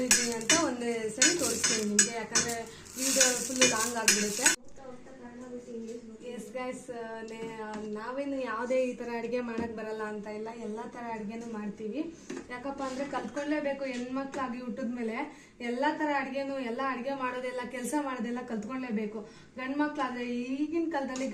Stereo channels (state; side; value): identical; both; correlation 1.00